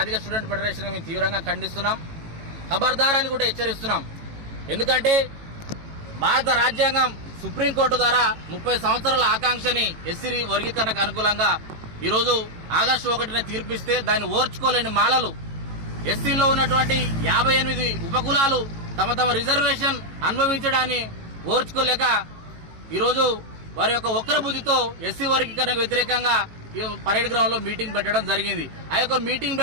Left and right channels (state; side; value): late; left; 18 ms